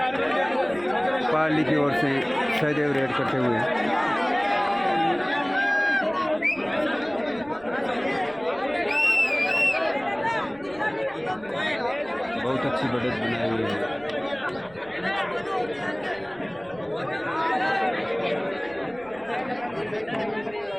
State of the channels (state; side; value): noise; right; rumble, 24 dB below the sound